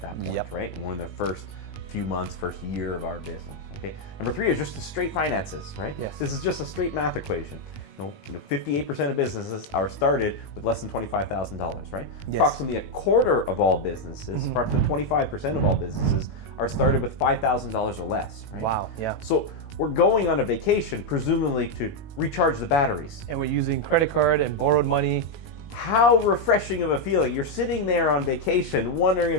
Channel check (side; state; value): right; late; 20 ms